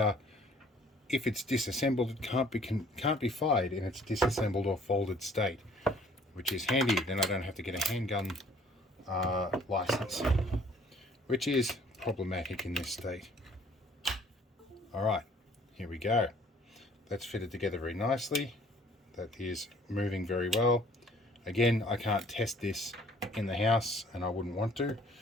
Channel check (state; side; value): normal; both; correlation 0.57